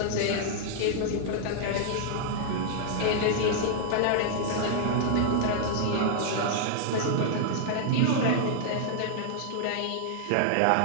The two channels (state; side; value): different; both; correlation -0.01